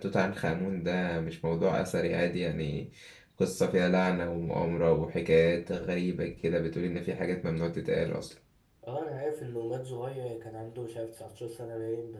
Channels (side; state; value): both; identical; correlation 1.00